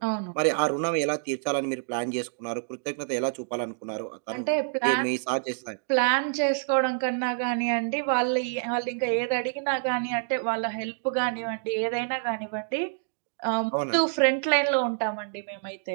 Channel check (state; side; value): silent; left; digital silence